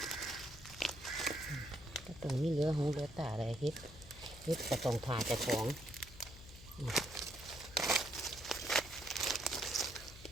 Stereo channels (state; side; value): noise; left; hum, 17 dB below the sound